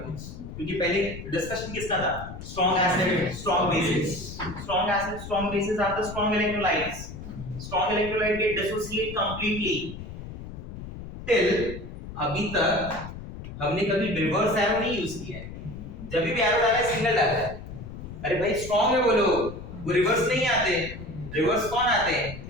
को, क्योंकि पहले डिस्कशन किसका था, strong acid strong bases, strong acid strong bases are the strong electrolytes, strong electrolyte get dissociate completely. Till अभी तक हमने कभी रिवर्स एरो नहीं यूज किया है, जब भी एरो डाला है सिंगल डाला है। अरे भाई स्ट्रांग है बोलो, वो रिवर्स नहीं आते, रिवर्स कौन आते हैं,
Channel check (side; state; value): left; noise; rumble, 11 dB below the sound